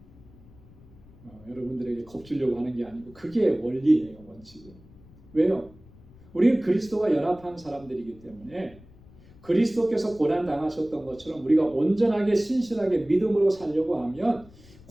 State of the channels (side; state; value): left; noise; rumble, 23 dB below the sound